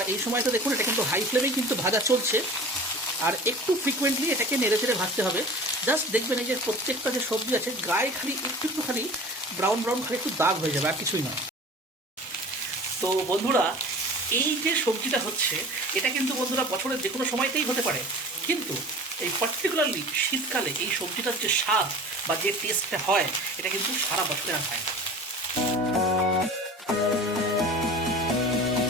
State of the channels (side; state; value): both; normal; correlation 0.39